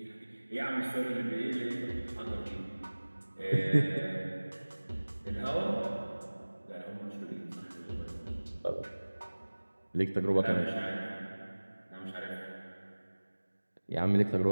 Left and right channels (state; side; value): inverted; both; correlation -1.00